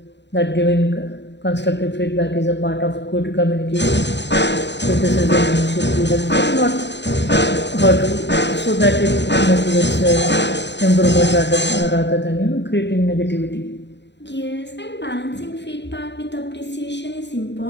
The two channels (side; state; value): right; late; 0.51 ms